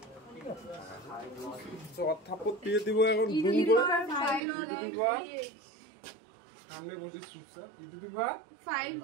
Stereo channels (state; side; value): drops out; left; at 4.4 s